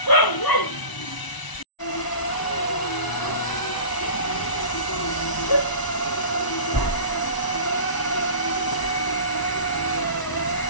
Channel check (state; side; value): late; right; 1.0 ms